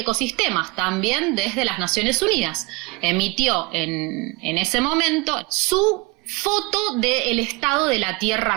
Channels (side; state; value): left; quieter; 24.5 dB